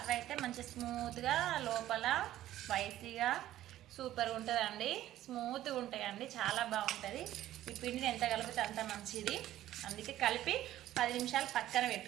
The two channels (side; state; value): left; quieter; 13.6 dB